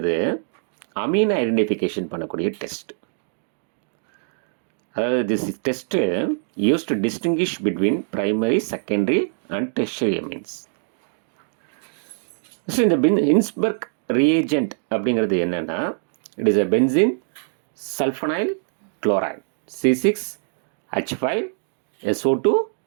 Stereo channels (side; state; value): left; silent; digital silence